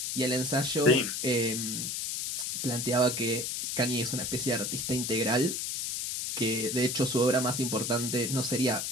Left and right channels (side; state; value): left; noise; hiss, 3 dB below the sound